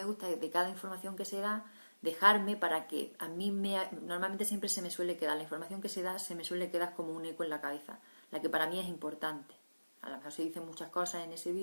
gusta es de cada información que se da, dejarme para que a mí normalmente siempre se me suele quedar, la información que se da se me suele quedar como un eco en la cabeza, la que para mí es importante. A lo mejor se dicen muchas cosas en ese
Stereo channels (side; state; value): both; inverted; correlation -1.00